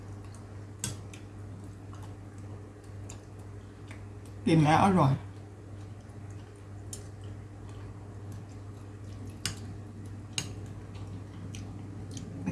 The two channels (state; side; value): identical; both; correlation 1.00